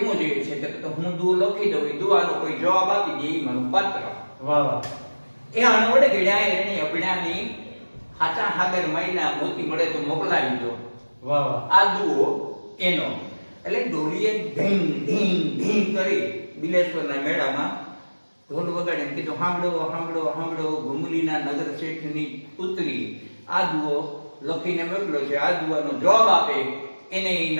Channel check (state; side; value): inverted; both; correlation -1.00